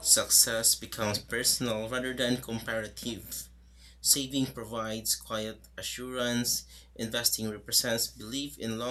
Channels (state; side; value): identical; both; correlation 1.00